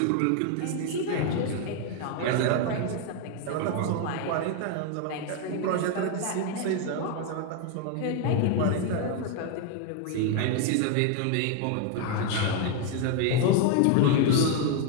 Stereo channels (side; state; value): both; different; correlation 0.01